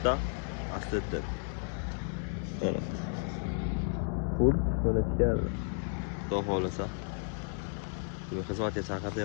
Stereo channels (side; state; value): right; silent; 56 dB below the other